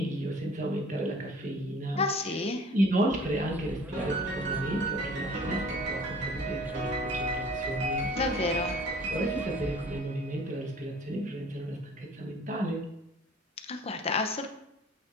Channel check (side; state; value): both; normal; correlation 0.48